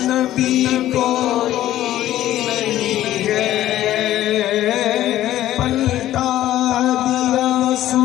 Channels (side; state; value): right; quieter; 13.6 dB